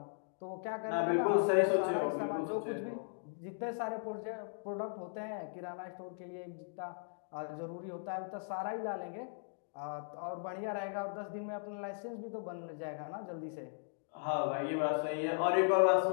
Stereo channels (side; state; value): right; silent; digital silence